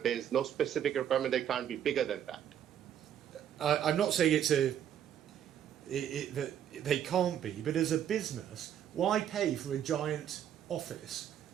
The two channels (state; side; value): quieter; left; 9.9 dB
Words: there is no specific requirement that it can't be bigger than that. I'm not saying that they can't be, but as a business, why pay for a giant office